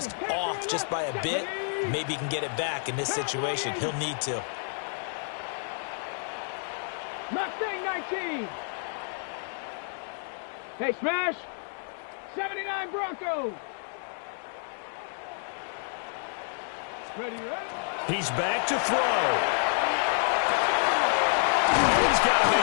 off just by a bit? Maybe he can get it back in this situation. He'll need to. Mustang 19. Hey, smash. 79 Broncos. Ready, ready. He's back to throw. Oh, he's got a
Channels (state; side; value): silent; right; 57 dB below the other